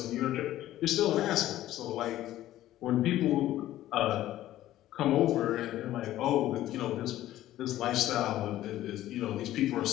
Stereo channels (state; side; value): quieter; right; 14.0 dB